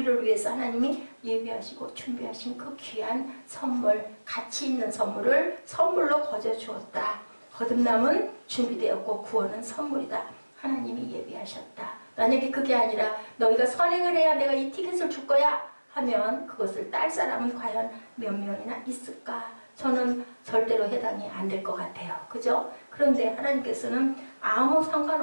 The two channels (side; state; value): both; inverted; correlation -1.00